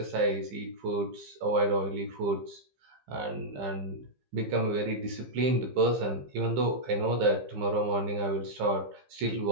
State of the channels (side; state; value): left; late; 15 ms